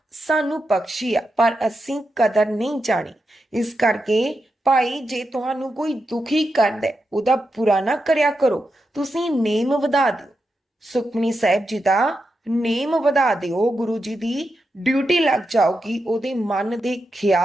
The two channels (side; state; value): both; normal; correlation 0.87